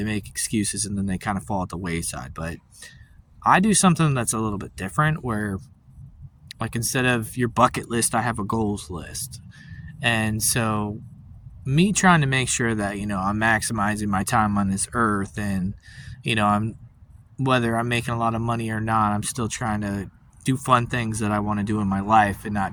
make excuses and then they kind of fall at the wayside. But I do something that's a little bit different where, like, instead of your bucket list, I have a goals list. And so, me trying to make sure that, I'm maximizing my time on this earth and, I'm whether I'm making a lot of money or not, I'm still trying to do fun things that I want to do in my life and not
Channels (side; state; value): both; identical; correlation 1.00